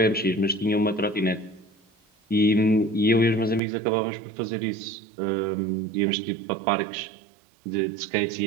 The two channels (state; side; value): drops out; left; at 3.6 s